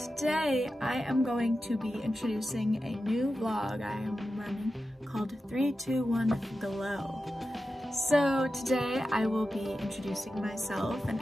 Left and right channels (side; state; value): both; normal; correlation 0.92